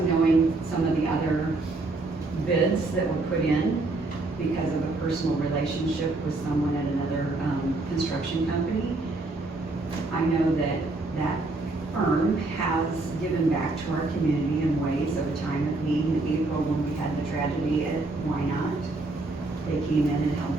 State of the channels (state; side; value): quieter; left; 3.2 dB